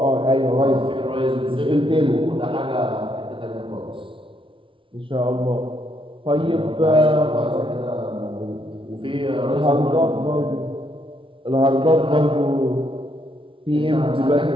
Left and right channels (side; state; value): left; late; 0.25 ms